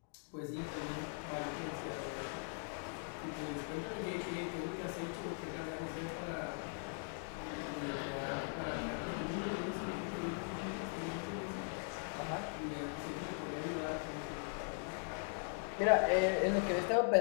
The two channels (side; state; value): right; silent; 51 dB below the other